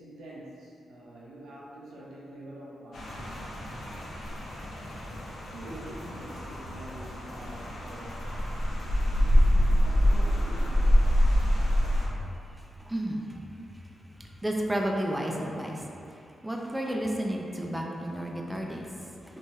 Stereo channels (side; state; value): both; normal; correlation 0.95